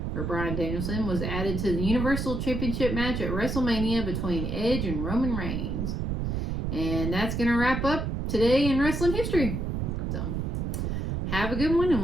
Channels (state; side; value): noise; right; rumble, 2 dB below the sound